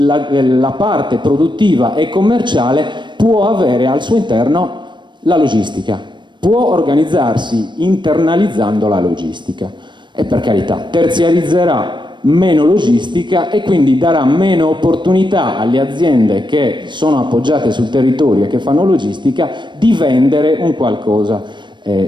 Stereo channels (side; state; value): left; late; 0.22 ms